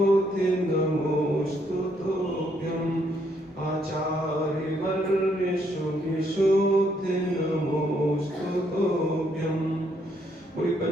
नमोस्तु तुभ्यं आचार्यवर्य शुभिशोधि नमोस्तु तुभ्यं। पूरी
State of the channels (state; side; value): normal; both; correlation 0.72